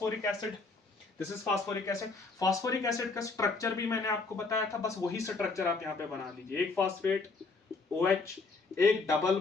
acid. This is phosphoric acid. Phosphoric acid का स्ट्रक्चर भी मैंने आपको बताया था, बस वही स्ट्रक्चर आप यहाँ पे बना लीजिए। एक फॉस्फेट OH, एक डबल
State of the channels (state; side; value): quieter; right; 3.9 dB